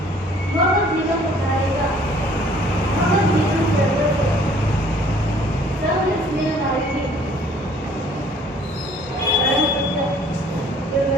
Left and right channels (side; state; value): both; normal; correlation 0.56